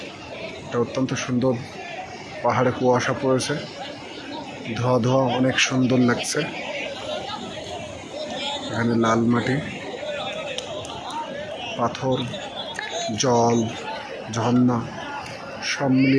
এটা অত্যন্ত সুন্দর। পাহাড়ে কুয়াশা পড়েছে, ধোয়া ধোয়া, অনেক সুন্দর লাগছে। এখানে লাল মাটি, পাথর, জল, ঝর্ণা সব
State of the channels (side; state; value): both; identical; correlation 1.00